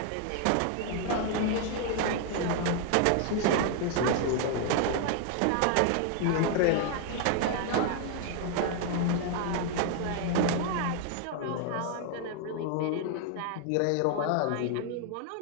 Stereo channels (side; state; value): both; different; correlation 0.00